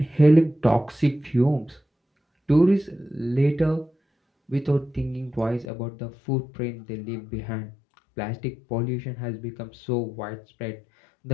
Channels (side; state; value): right; drops out; at 5.7 s